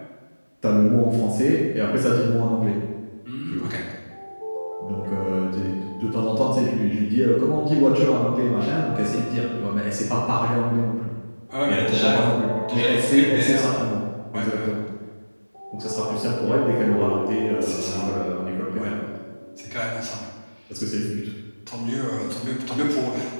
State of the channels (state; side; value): inverted; both; correlation -1.00